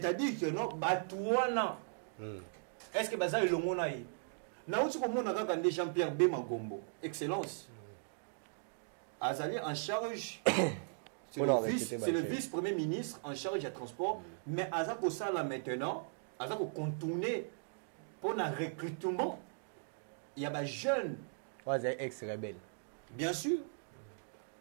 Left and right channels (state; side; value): silent; left; digital silence